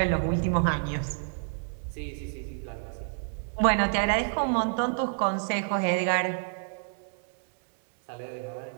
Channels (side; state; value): left; silent; 59 dB below the other